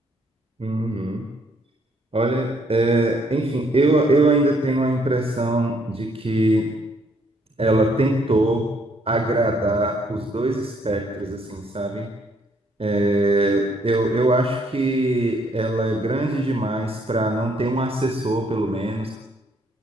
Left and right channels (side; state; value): both; normal; correlation 0.68